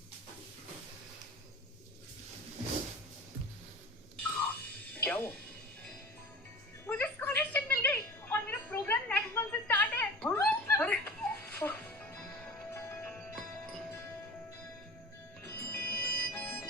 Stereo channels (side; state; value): both; normal; correlation 0.38